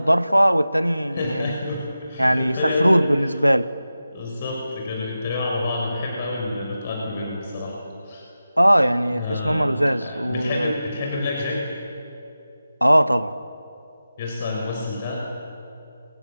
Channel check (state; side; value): inverted; both; correlation -0.93